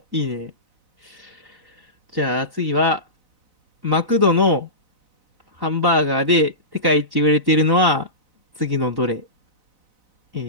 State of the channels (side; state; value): left; late; 4.0 ms